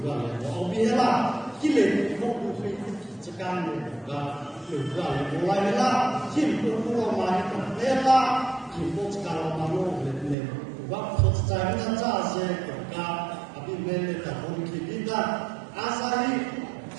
oh biarlah Kile ko ku fi tsakan ga ga mulai la kin ko ko ma ni ko la kin ko tsakan ma no ne wa ko tsakan na cha se ga abi me ne ta ko ki dinda asai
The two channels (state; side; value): drops out; left; at 10.4 s